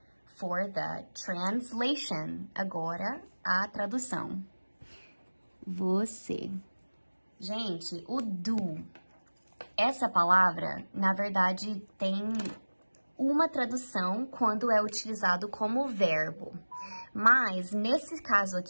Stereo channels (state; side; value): inverted; both; correlation -1.00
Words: for the translation. Agora, a tradução. Você. Gente, o do Essa palavra, na verdade, tem uma tradução quando é utilizado como verbo. Mas, nesse caso